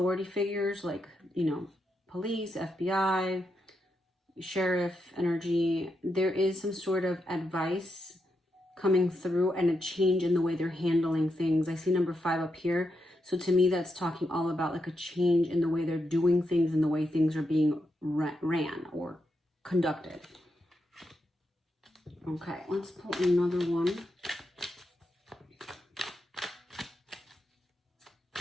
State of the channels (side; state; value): both; normal; correlation 0.84